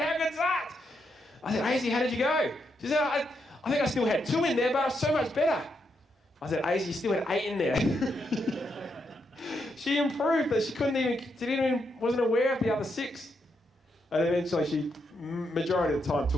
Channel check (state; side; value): normal; both; correlation 0.81